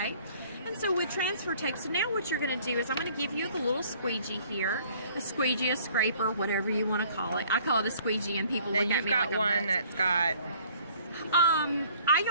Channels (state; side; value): inverted; both; correlation -0.56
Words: And so with transfer tape, so now what you're going to do is I'm going to give you the little squeegee here, a squeegee, a scraper, whatever you want to call it. I call it a squeegee, and people look at me like I'm nuts. You've got one that's got... I